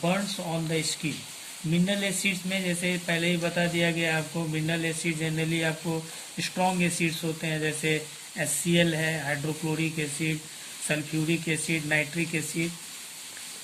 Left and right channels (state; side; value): identical; both; correlation 1.00